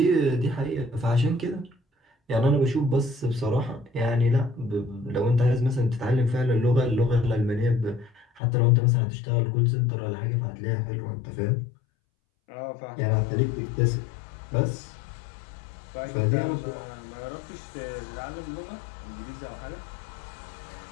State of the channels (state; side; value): drops out; right; at 8.4 s